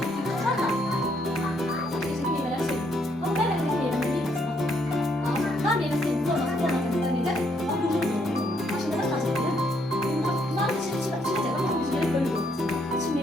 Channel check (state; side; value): normal; both; correlation 0.72